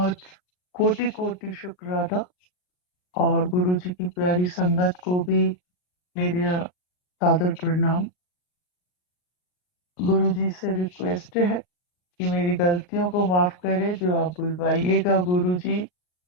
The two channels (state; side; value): late; right; 39 ms